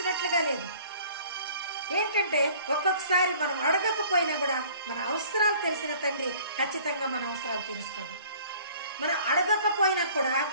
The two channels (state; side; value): inverted; both; correlation -0.52